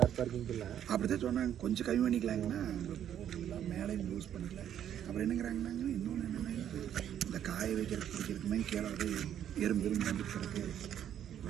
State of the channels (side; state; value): left; quieter; 10.1 dB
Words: பார்க்கிங் இல்லை அப்படி தான் சொன்னாங்க. கொஞ்சம் கம்மி பண்ணிக்கலாங்கன்னா போட்டுக்கலாம், மேலே யூஸ் பண்ணிக்கலாம். அப்புறம் என்னங்கிறாங்கன்னாங்க, இன்னொன்று என்னென்னா இந்த காய வைக்கிறது பிடிக்கிறதுக்கு மாதிரி கீழே வந்து எறும்பு வந்துக்கிறதுக்கு